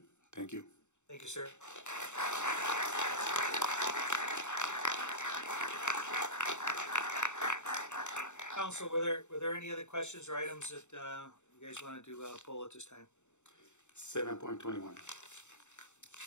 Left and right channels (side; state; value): right; late; 0.84 ms